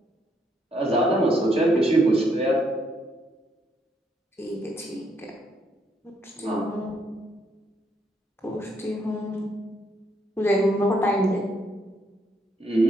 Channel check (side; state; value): both; normal; correlation 0.73